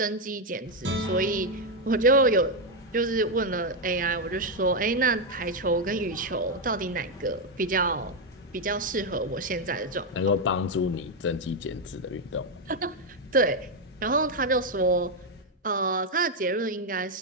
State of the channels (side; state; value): both; normal; correlation 0.04